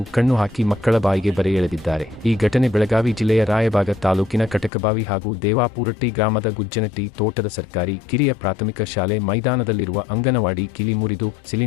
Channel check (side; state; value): right; drops out; at 4.7 s